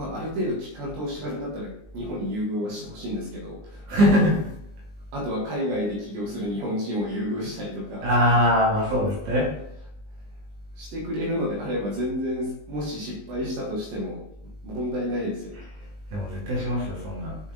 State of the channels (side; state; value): left; late; 20 ms